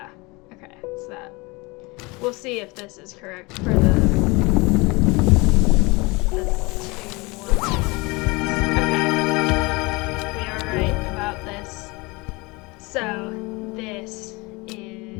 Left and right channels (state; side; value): quieter; right; 25.3 dB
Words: okay, it's that. We'll see if this is correct for the 2 more. So, this